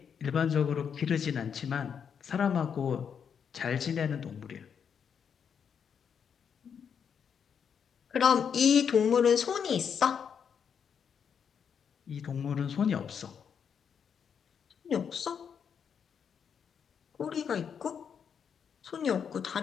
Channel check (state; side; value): quieter; right; 7.3 dB